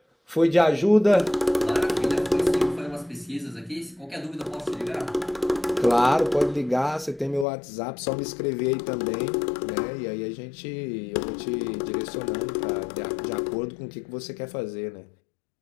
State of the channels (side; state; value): right; drops out; at 7.5 s